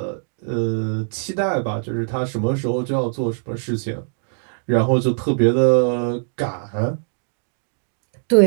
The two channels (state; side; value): silent; left; 64 dB below the other